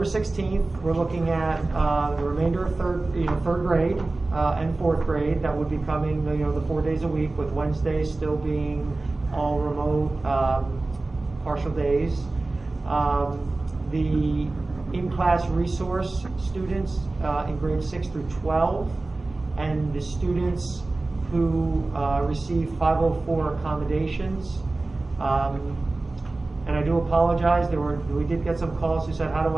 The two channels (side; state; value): left; quieter; 3.2 dB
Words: 16th, we're looking at the remainder of third grade and fourth grade. That would be coming, the 4 days a week, with Wednesdays still being all remote, partial days. The in-class resource students in grades 6 through 12, and the students who receive 504 accommodations. And I do apologize, we did get some calls who said, how do